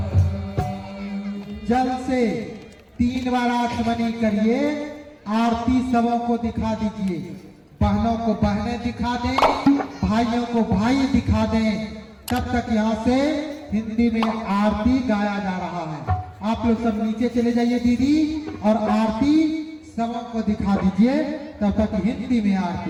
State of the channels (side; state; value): both; identical; correlation 1.00